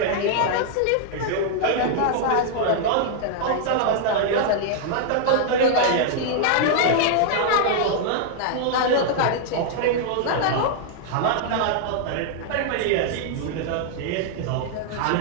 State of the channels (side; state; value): both; different; correlation -0.01